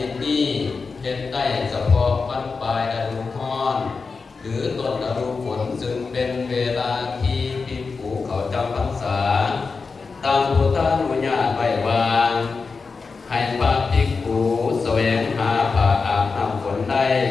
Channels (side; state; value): right; quieter; 4.6 dB